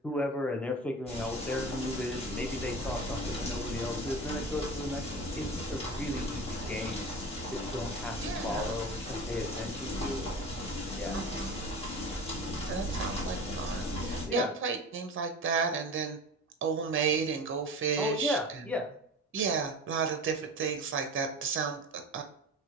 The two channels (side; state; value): both; normal; correlation 0.33